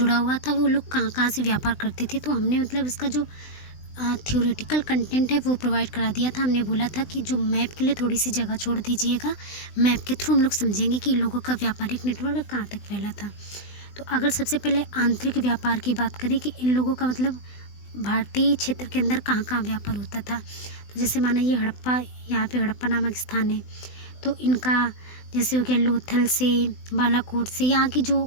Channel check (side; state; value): right; late; 20 ms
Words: हुआ था, वो लोग कहाँ कहाँ से व्यापार करते थे। तो हमने मतलब इसका जो थ्योरेटिकल कंटेंट है वो प्रोवाइड करा दिया था। हमने बोला था कि जो मैप के लिए थोड़ी सी जगह छोड़ दीजिएगा, मैप के थ्रू हम लोग समझेंगे कि इन लोगों का व्यापारिक नेटवर्क कहाँ तक फैला था। तो अगर सबसे पहले आंतरिक व्यापार की बात करें कि इन लोगों का मतलब भारतीय क्षेत्र के अंदर कहाँ कहाँ व्यापार होता था, तो जैसे माना ये हड़प्पा, यहाँ पे हड़प्पा नामक स्थान है, तो इनका जैसे हो गया लोथल से, बालाकोट से, यहाँ की